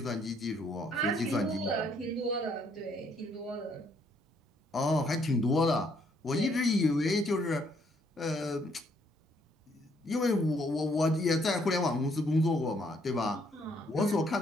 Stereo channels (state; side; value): normal; both; correlation 0.69